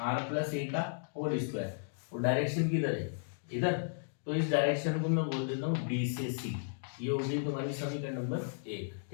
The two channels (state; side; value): silent; right; digital silence